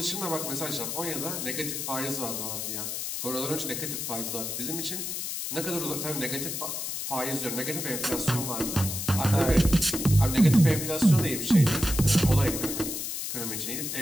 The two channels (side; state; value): left; noise; hiss, 4 dB below the sound